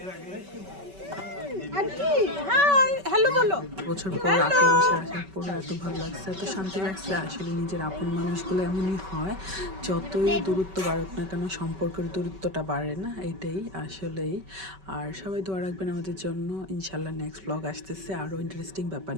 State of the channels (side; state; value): left; late; 5.2 ms